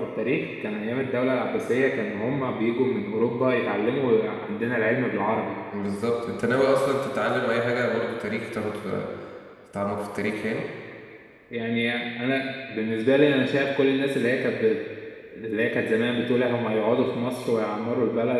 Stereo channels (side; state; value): both; identical; correlation 1.00